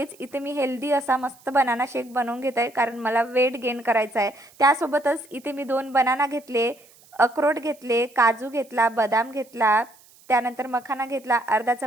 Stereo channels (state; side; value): noise; right; hiss, 27 dB below the sound